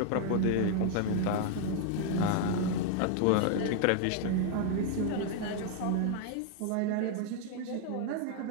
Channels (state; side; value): different; both; correlation 0.00